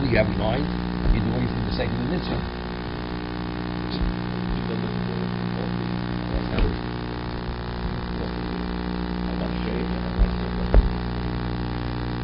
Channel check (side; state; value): both; identical; correlation 1.00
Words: you have in mind, you're doing it for the sake of the mitzvah. You build it for both reasons. I want shade and I want sukkah.